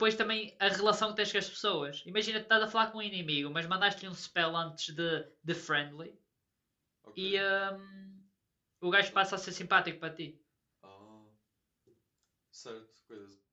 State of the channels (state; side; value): identical; both; correlation 1.00